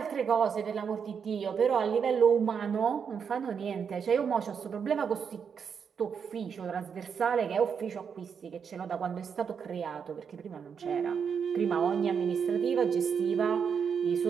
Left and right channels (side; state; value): left; quieter; 6.8 dB